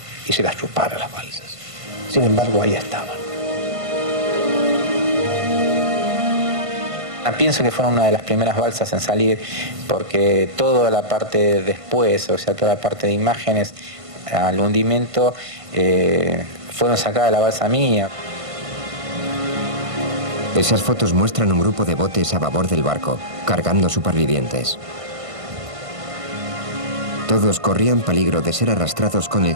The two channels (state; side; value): late; left; 1.5 ms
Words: y se las chupara las balsas. Sin embargo, ahí estaban. Pienso que fueron una de las primeras balsas en salir, porque toda la parte después, o sea, toda la parte de imágenes al hundimiento, fueron sacadas de la balsa mía. Esas fotos muestran un grupo de botes a babor del barco, cargando supervivientes. Todos corrían peligro de ser arrastrados con el